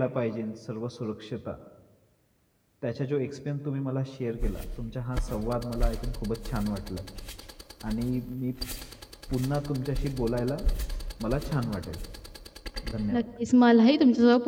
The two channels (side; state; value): both; identical; correlation 1.00